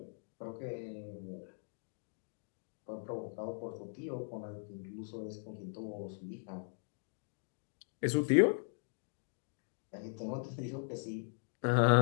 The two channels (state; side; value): silent; right; digital silence